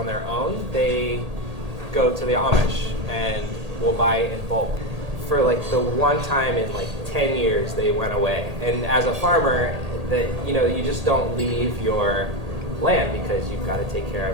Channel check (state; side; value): late; left; 1.8 ms